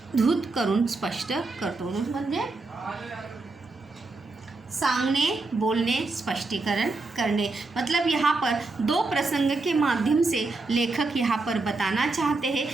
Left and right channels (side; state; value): left; quieter; 3.5 dB